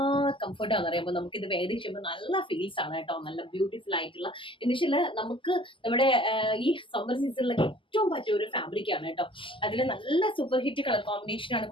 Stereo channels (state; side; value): late; right; 0.25 ms